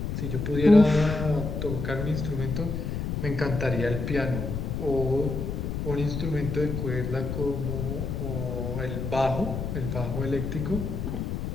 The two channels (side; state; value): left; noise; rumble, 3 dB below the sound